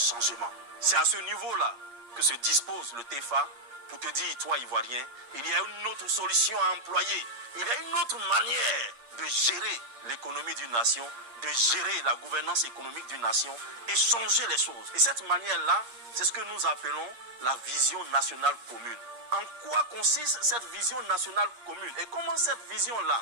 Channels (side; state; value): left; late; 8.5 ms